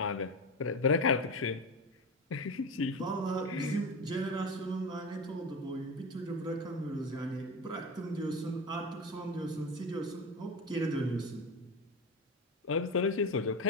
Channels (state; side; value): normal; both; correlation 0.22